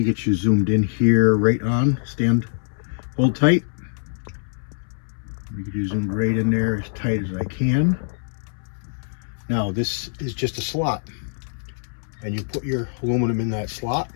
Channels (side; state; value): right; silent; 63 dB below the other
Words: get you zoomed in here, right on. Stand, hold tight. Let me get you zoomed right in there as tight as I can. Now this is just a slot, and you put your aluminum in that slot